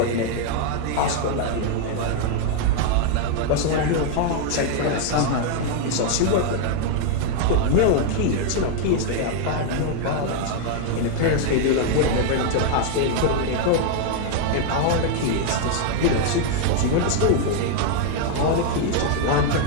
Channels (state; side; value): different; both; correlation 0.00